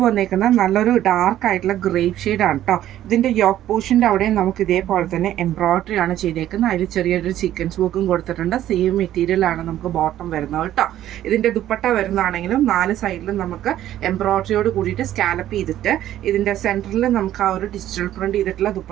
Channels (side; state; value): left; quieter; 12.6 dB